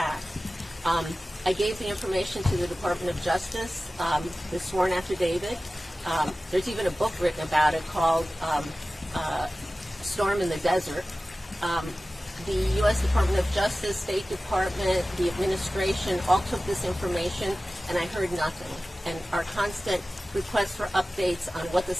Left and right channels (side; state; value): both; normal; correlation 0.96